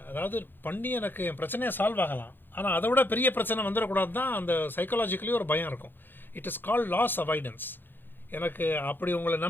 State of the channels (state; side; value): late; right; 0.096 ms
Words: அதாவது பண்ணி எனக்கு என் பிரச்சனையை சால்வ் ஆகலாம், ஆனால் அதை விட பெரிய பிரச்சனை வந்துடக்கூடாது தான் அந்த சைக்காலஜிக்கலி ஒரு பயம் இருக்கும். It is called loss avoidance. எனக்கு அப்படி உங்களை